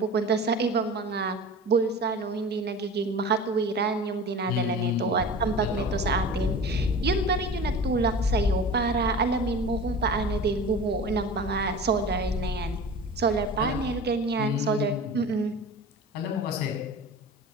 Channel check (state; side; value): normal; both; correlation 0.36